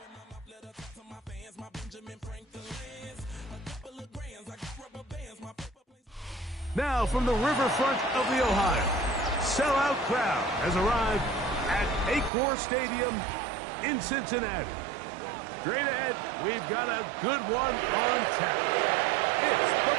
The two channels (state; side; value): drops out; left; at 12.3 s